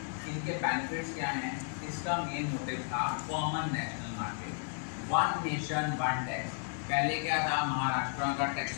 इनके बेनिफिट्स क्या हैं? इसका मेन मोटिव था common national market, one nation one tax. पहले क्या था? महाराष्ट्र का टैक्स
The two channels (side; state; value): right; silent; 55 dB below the other